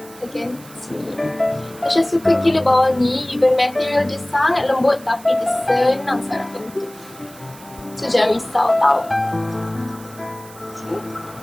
bahagian sini. Tasha suka gila bawal ni, even material dia sangat lembut tapi dia senang sangat bentuk. So jangan risau tau. Okay.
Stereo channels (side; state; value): right; noise; hiss, 21 dB below the sound